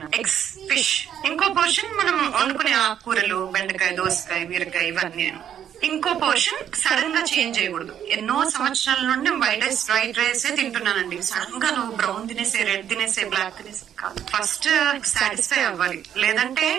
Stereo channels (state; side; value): quieter; left; 9.7 dB